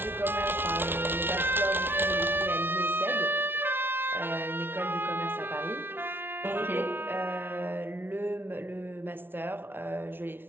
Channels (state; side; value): late; left; 0.11 ms